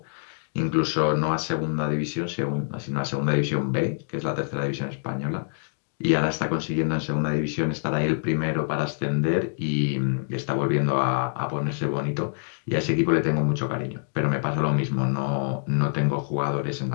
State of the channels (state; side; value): silent; right; digital silence